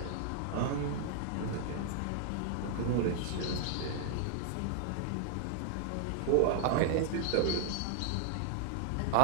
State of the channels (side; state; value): both; different; correlation -0.01